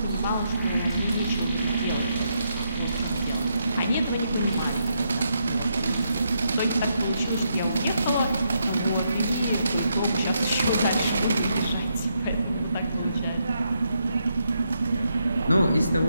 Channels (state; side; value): inverted; both; correlation -0.79